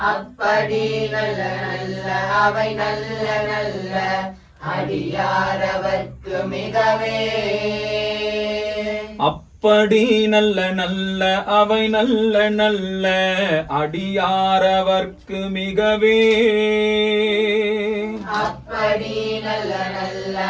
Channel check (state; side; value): identical; both; correlation 1.00